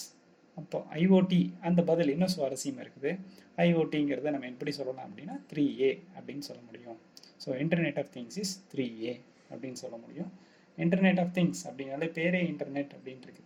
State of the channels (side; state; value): both; identical; correlation 1.00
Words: அப்போ ஐஓடி அந்த பதில் இன்னும் சுவாரஸ்யமாக இருக்குது. ஐஓடிங்கிறத நம்ம எப்படி சொல்லலாம் அப்படின்னா 3A அப்படின்னு சொல்ல முடியும். So internet of things is 3A அப்படின்னு சொல்ல முடியும். இன்டர்நெட் ஆஃப் திங்ஸ் அப்படின்னாலே பேரே இன்டர்நெட் அப்படின்னு